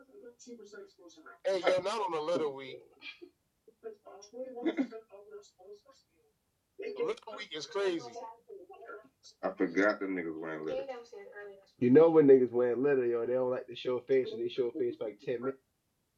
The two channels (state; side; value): identical; both; correlation 1.00